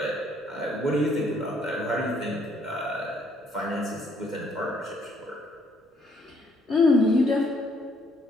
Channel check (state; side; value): normal; both; correlation 0.67